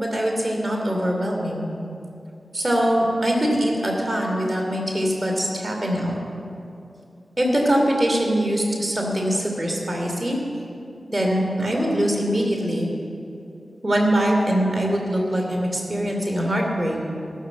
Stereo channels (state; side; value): normal; both; correlation 0.93